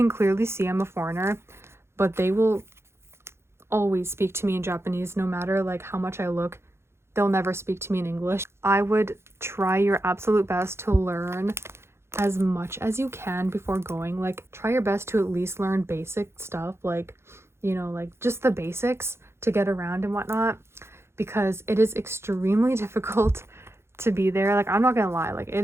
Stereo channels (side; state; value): left; late; 0.12 ms